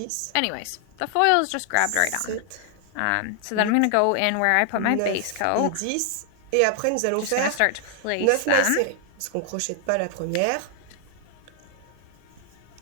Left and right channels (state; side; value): different; both; correlation 0.00